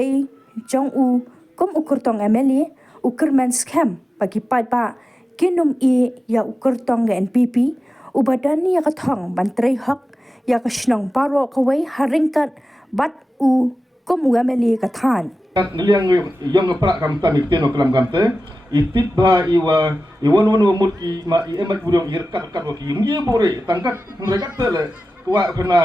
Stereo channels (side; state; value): both; normal; correlation 0.95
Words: jong u kum ukurtong MLA ukurman scam bagi pa kinum e ya ukurtong ga NPP ubadani ya kathong bantrai hak ya kashnong paro kawai haringkat bat u kum MLA kathan niliang yong pra kam ta mikten oklam kamte itip ba iwa iwan mut ki ma i emat budong irkat kat ki ngie bore tangkat mereka tele kwa